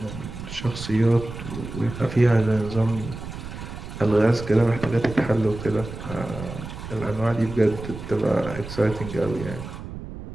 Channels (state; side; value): noise; right; rumble, 10 dB below the sound